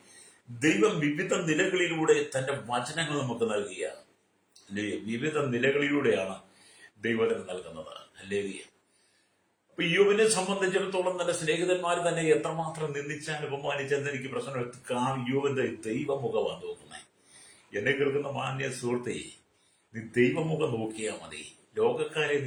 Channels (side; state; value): both; identical; correlation 1.00